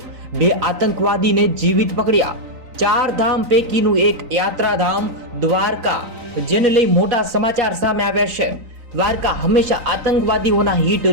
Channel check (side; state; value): left; late; 3.9 ms